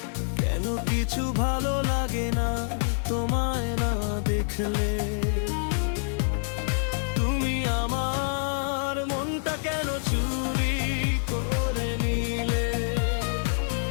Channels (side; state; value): right; silent; 60 dB below the other